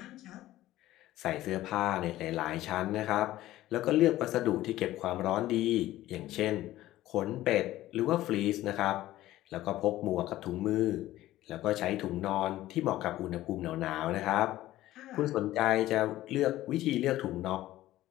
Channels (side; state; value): right; quieter; 15.2 dB